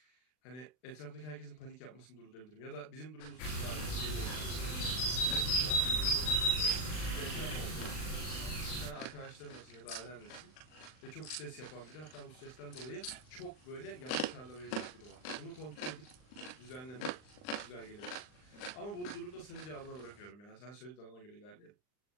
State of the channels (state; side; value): late; right; 39 ms